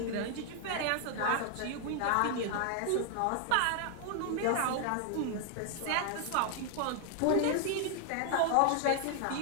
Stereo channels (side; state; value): both; different; correlation 0.00